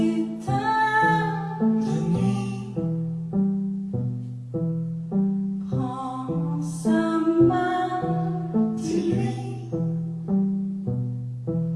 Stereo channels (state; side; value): identical; both; correlation 1.00